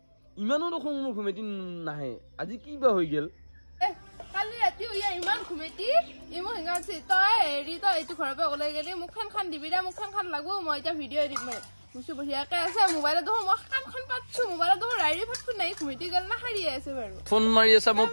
ইমানো দেখোন মোৰ ঘুমেটি নাহে আজি কি বা হৈ গেল কালি ৰাতি ইমান ঘুমেটি ইমো হিঙাছি তই হেৰি তই এইটো ঘৰৰ পৰা ওলাই গেলি মুখখন খান দিবি দে মুখখন খান লাগো মই এতিয়া ভিডিঅ' এডিট মাৰি মুচি বঢ়িয়াকে আছে মোবাইলত দেখোন মই কাণখন পাতছো মোবাইলত দেখোন ৰাইৰি ফাটফুট নাই ঘুমেটি গেল না হাৰি আছে বাৰু ফোন মাৰি আছে মই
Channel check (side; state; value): both; inverted; correlation -1.00